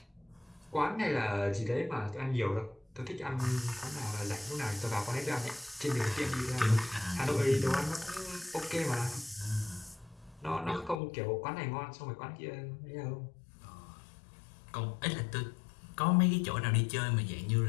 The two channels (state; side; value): drops out; right; at 11.0 s